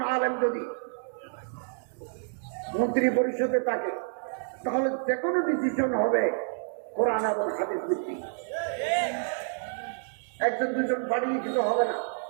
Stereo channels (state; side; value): silent; left; digital silence